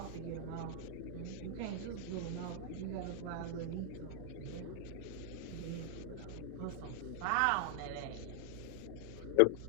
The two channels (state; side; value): different; both; correlation 0.00